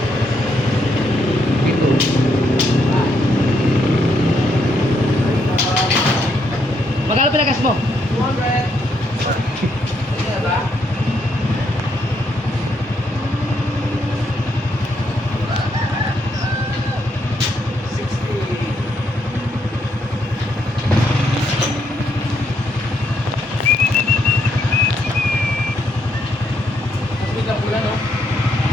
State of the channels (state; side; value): normal; both; correlation 0.76